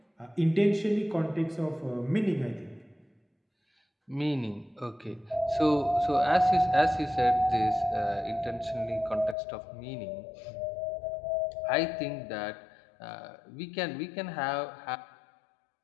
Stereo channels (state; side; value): drops out; right; at 9.3 s